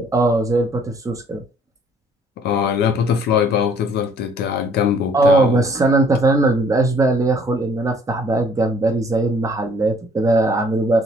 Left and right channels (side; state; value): both; normal; correlation 0.59